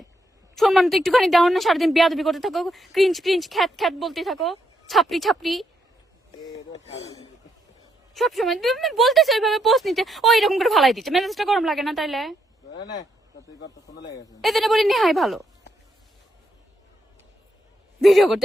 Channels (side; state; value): both; normal; correlation 0.78